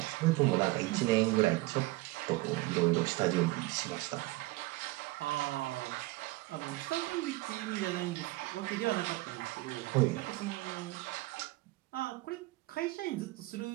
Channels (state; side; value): quieter; left; 20.6 dB